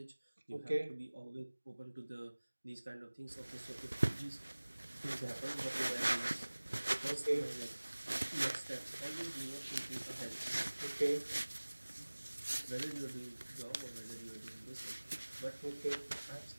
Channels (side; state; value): both; inverted; correlation -1.00